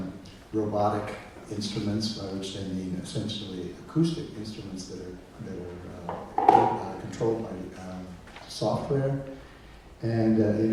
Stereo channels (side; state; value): both; identical; correlation 1.00